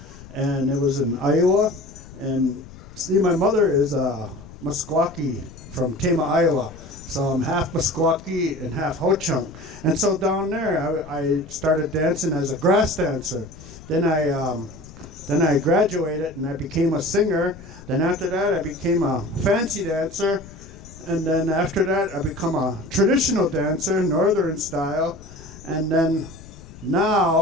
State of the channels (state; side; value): noise; left; rumble, 18 dB below the sound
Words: and it was in Iowa. And see, my mother is a Meskwaki from Tama, Iowa. So I'm half Meskwaki and half Ho-Chunk. And so down there, I started dancing as a grass dancer. Then I graduated and I became a singer. Then after that, I became a fancy dancer. And then after that, I become a traditional dancer, northern style. And then